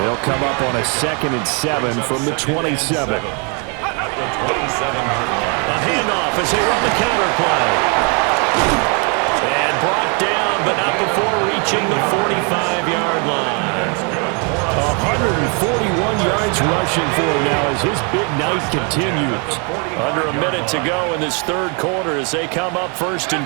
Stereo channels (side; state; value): left; quieter; 35.7 dB